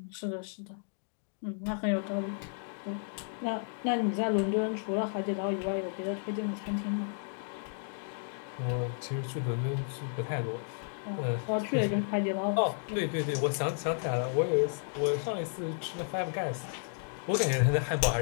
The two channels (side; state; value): right; silent; digital silence